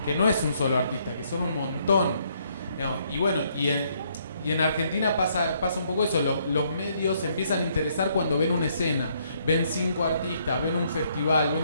que no es un solo artista, que son un montón. Digamos, y bueno, y en Argentina pasa un poco eso, los medios se empiezan a interesar cuando ven una escena, ven 5 artistas, ven un festival, ven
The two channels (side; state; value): both; inverted; correlation -0.70